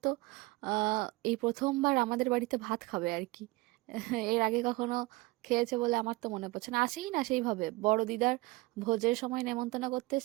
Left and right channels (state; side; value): quieter; left; 22.5 dB